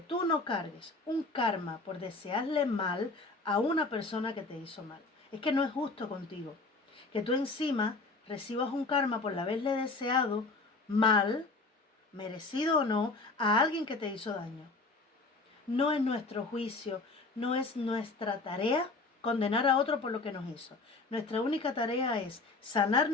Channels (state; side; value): quieter; right; 3.5 dB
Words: no cargues un karma por desearle mal a una persona que te hizo mal. Es que no es justo contigo que tú encima recibas un karma por haberle deseado mal, merecido o no, a alguien que te hizo daño. No es nuestro juicio, no es nuestra tarea condenar a otro por lo que nos hizo. Nuestra única tarea es sanar